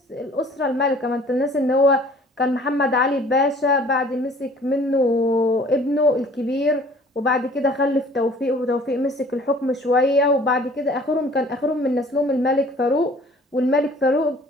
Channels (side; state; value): both; normal; correlation 0.51